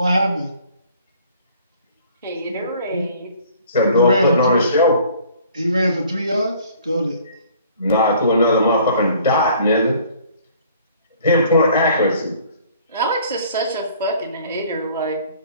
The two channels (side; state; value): both; inverted; correlation -0.55